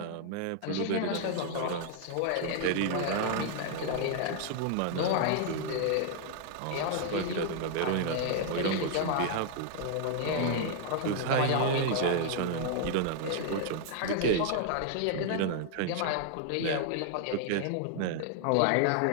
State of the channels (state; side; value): different; both; correlation 0.00